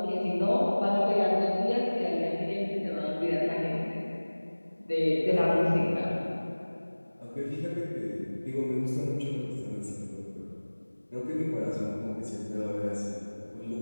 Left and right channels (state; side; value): inverted; both; correlation -1.00